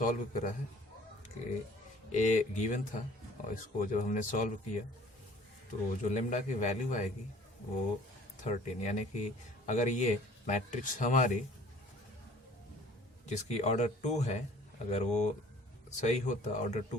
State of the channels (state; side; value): normal; both; correlation 0.51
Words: करा है कि ए गिवन था, और इसको जब हमने सॉल्व किया तो जो लेमडा की वैल्यू आएगी वो 13, यानी कि अगर ये मैट्रिक्स हमारी जिसकी ऑर्डर 2 है, अगर वो सही होता ऑर्डर